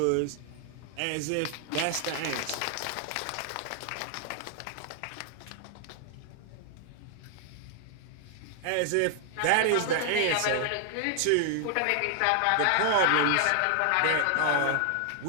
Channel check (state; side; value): different; both; correlation 0.00